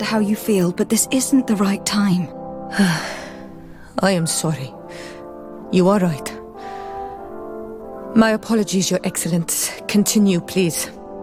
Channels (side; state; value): both; identical; correlation 1.00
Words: how you feel, but this isn't the right time. I am sorry. You are right. My apologies, Your Excellence. Continue, please.